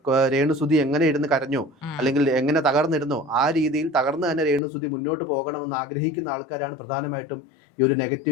രേണുസുതി എങ്ങനെ ഇരുന്ന് കരഞ്ഞോ അല്ലെങ്കിൽ എങ്ങനെ തകർന്നിരുന്നോ ആ രീതിയിൽ തകർന്ന് തന്നെ രേണുസുതി മുന്നോട്ട് പോകണമെന്ന് ആഗ്രഹിക്കുന്ന ആൾക്കാരാണ് പ്രധാനമായിട്ടും ഈ ഒരു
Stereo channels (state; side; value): drops out; right; at 4.6 s